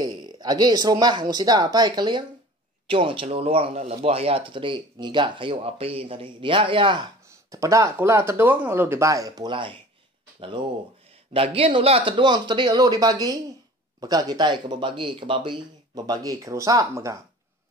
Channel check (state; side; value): normal; both; correlation 0.43